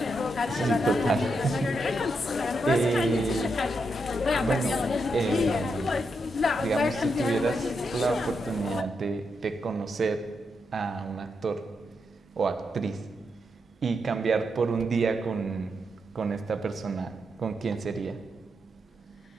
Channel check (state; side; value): normal; both; correlation 0.83